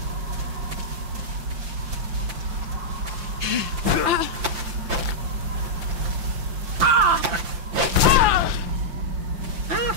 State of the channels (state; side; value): late; left; 5.8 ms